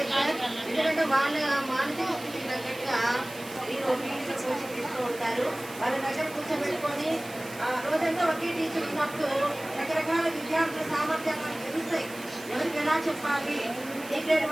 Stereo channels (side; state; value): right; noise; hiss, 16 dB below the sound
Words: సార్. ఎందుకంటే వాళ్ళ మానసిక స్థితికి తగ్గట్టుగా మీరు ఫీజు కోచింగ్ తీస్తూ ఉంటారు. వాళ్ళ దగ్గర కూర్చోబెట్టుకొని రోజంతా ఒకే టీచర్ ఉన్నప్పుడు రకరకాల విద్యార్థుల సామర్థ్యాలు తెలుస్తాయి. ఎవరికి ఎలా చెప్పాలి, ఏ గ్రేడ్